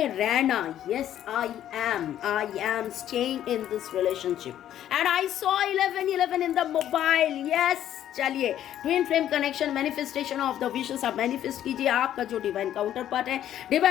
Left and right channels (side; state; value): right; quieter; 11.4 dB